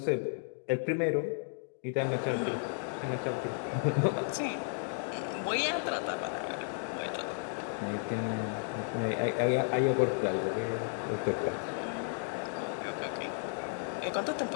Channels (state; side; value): silent; right; 55 dB below the other